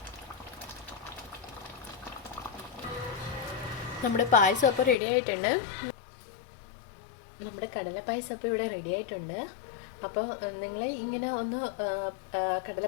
നമ്മുടെ പായസം അപ്പോൾ റെഡി ആയിട്ടുണ്ട്. നമ്മുടെ കടലപ്പായസം അപ്പോൾ ഇവിടെ റെഡി ആയിട്ടുണ്ട്. അപ്പോൾ നിങ്ങൾ ഇങ്ങനെ ഒന്ന്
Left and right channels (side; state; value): right; drops out; at 5.0 s